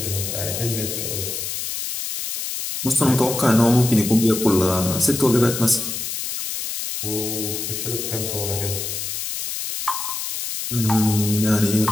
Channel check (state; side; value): noise; left; hiss, 4 dB below the sound